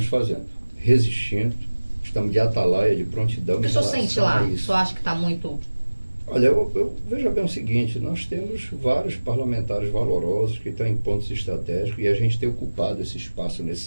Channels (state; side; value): inverted; both; correlation -1.00